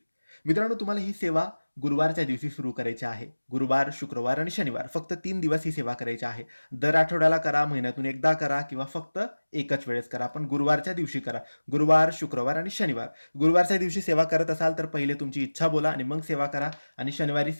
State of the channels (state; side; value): inverted; both; correlation -1.00